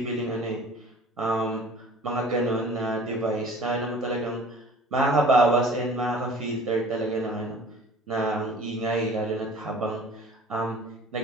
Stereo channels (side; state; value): both; normal; correlation 0.46